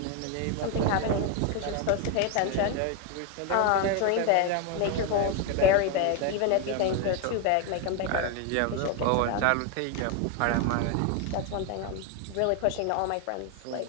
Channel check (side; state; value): both; different; correlation 0.01